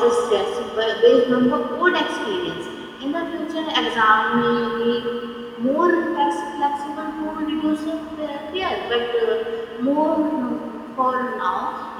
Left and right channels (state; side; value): identical; both; correlation 1.00